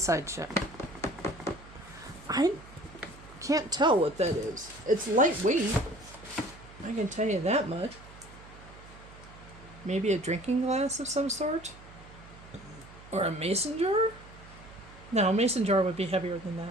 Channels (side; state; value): right; noise; hum, 19 dB below the sound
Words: shut. I can't tell what that is. It's lightweight. I can tell you that much. Maybe a drinking glass of some sort? Or a mason jar? No, a mason jar would be heavier than